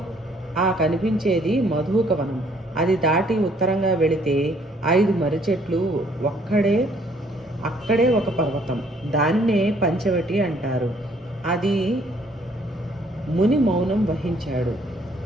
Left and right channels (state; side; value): normal; both; correlation 0.63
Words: ఆ కనిపించేది మధుకవనం. అది దాటి ఉత్తరంగా వెళితే 5 మర్రి చెట్లు, అక్కడే ఒక పర్వతం. దానినే పంచవటి అంటారు. అది ముని మౌనం వహించాడు.